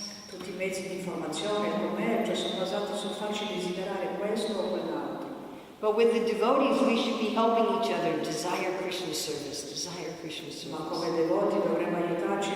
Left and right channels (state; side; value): identical; both; correlation 1.00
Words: Tutti i mezzi di informazione e il commercio sono basati sul farci desiderare questo o quell'altro. But with the devotees, we should be helping each other desire Krishna's service, desire Krishna's Ma service. come devoti dovremmo aiutarci